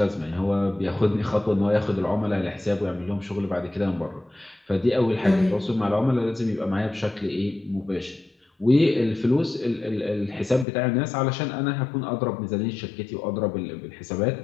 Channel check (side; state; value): right; drops out; at 10.7 s